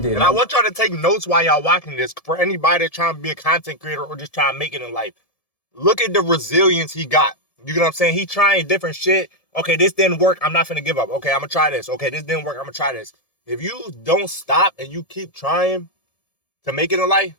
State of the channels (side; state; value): right; late; 1.7 ms